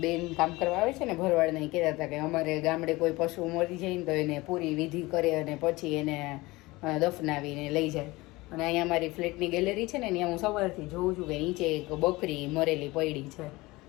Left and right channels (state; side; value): quieter; right; 21.3 dB